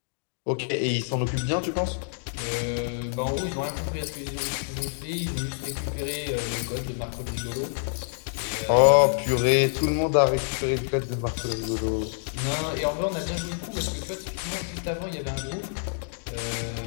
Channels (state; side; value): silent; right; digital silence